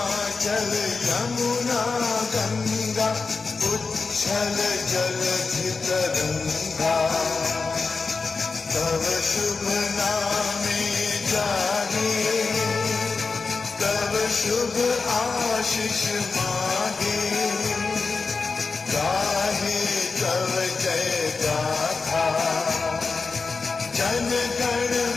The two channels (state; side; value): quieter; right; 4.4 dB